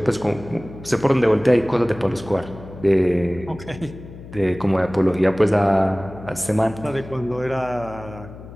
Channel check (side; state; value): left; noise; hum, 16 dB below the sound